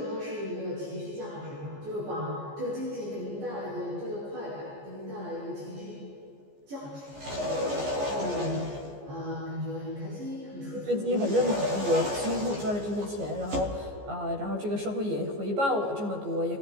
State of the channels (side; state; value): left; late; 14 ms